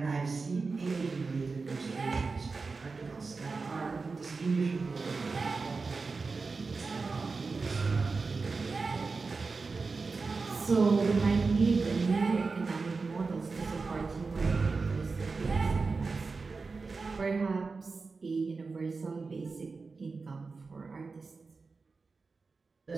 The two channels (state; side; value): quieter; left; 4.3 dB